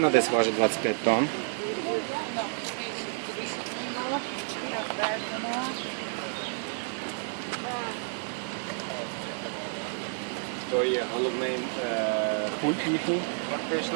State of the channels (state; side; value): silent; left; 58 dB below the other